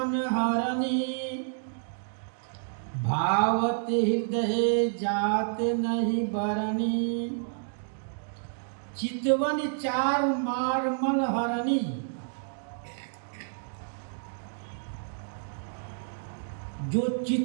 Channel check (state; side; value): silent; left; digital silence